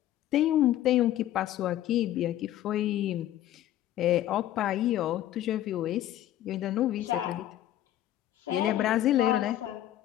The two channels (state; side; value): quieter; right; 13.0 dB